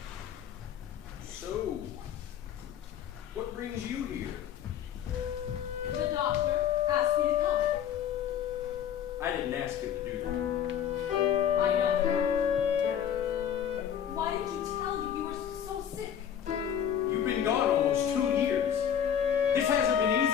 So, what brings you here? The doctor asked me to come. I didn't ask him to do that. I know. Why did you tell me you were so sick? You've been gone almost 2 years. This hasn't been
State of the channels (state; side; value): quieter; right; 9.2 dB